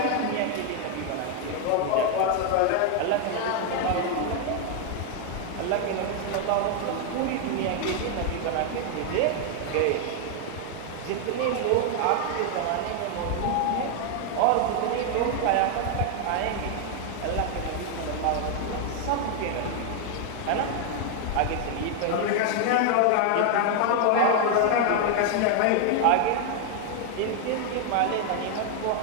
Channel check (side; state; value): both; different; correlation 0.00